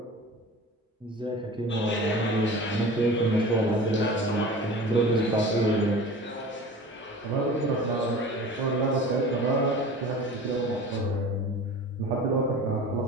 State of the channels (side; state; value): both; normal; correlation 0.38